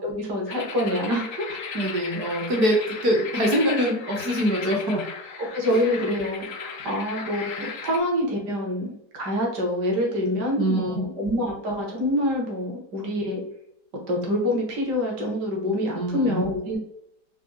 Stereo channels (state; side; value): late; left; 4.6 ms